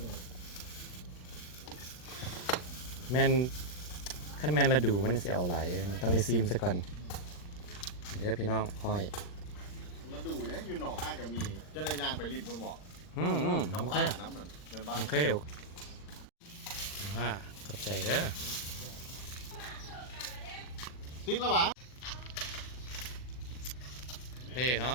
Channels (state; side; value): late; right; 40 ms